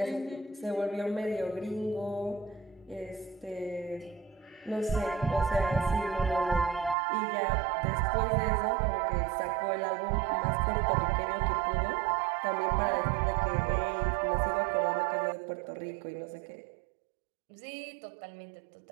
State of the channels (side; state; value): left; drops out; at 7.0 s